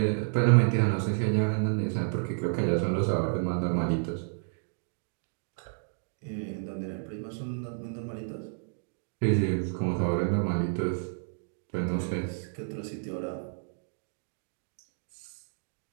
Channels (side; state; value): left; silent; digital silence